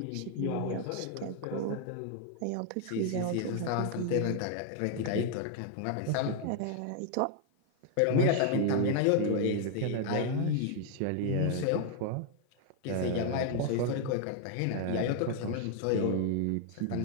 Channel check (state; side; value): different; both; correlation 0.00